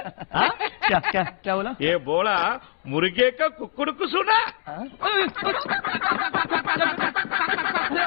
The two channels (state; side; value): silent; right; digital silence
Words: क्या बोला? ये बोला मुर्गे का कुकुड़कु सुना?